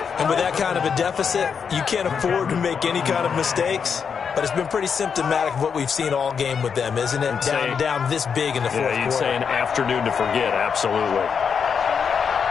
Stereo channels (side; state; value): right; quieter; 6.5 dB